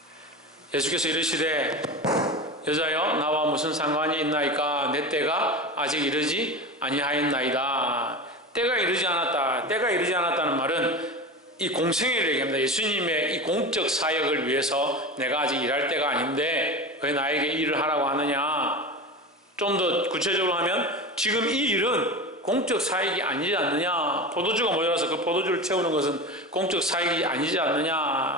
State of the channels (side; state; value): both; normal; correlation 0.27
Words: 예수께서 이르시되 여자여 나와 무슨 상관이 있나이까, 내 때가 아직 이르지 아니하였나이다. 때가 이르지 않았다. 때가 이르지 않았다는 말은 이 공생애를 얘기합니다. 예수님의 이 공적 사역을 위해서 내가 아직 일할 때가 아닌데 왜 나에게 일을 하라고 하느냐. 좀 더 구체적으로 하면 지금 이 일은 공적 사역이 아니지 않느냐. 포도주가 모자라서 그 포도주를 채우는 것은 공적 사역이 아니지